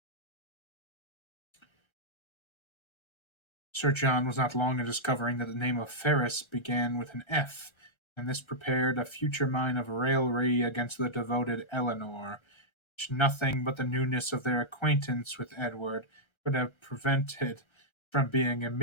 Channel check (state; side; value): late; right; 1.3 ms